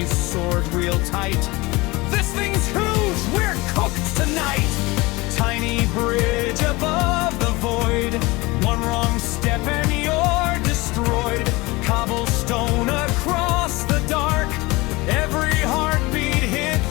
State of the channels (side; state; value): right; quieter; 22.8 dB